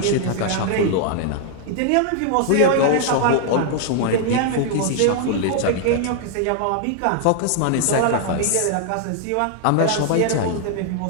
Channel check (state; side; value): different; both; correlation 0.00